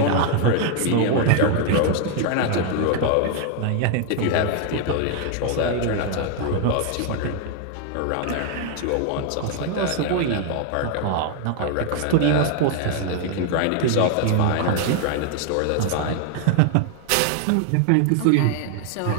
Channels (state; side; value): different; both; correlation 0.00